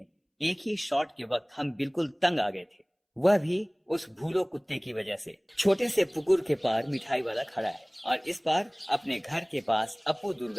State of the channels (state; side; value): identical; both; correlation 1.00